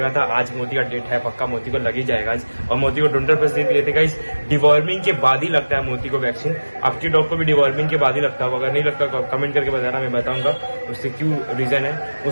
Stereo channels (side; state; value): both; inverted; correlation -1.00